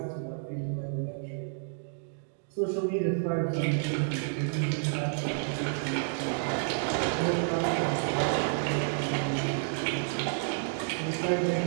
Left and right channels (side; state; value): left; silent; digital silence